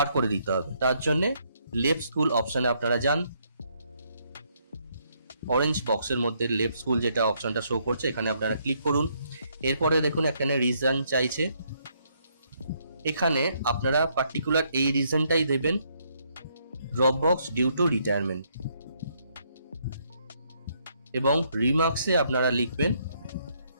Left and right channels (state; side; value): inverted; both; correlation -0.72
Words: করে দিতে হবে। তার জন্য লেফট স্কুল অপশনে আপনারা যান, অরেঞ্জ বক্সের মধ্যে লেফট স্কুল যেটা অপশনটা শো করছে এখানে আপনারা ক্লিক করুন। এরপরে দেখুন এখানে রিজন চাইছে, এখানে আপনারা পার্টিকুলার এই রিজনটাই দেবেন, drop box due to retirement. এবং রিমার্কসে আপনারা লিখবেন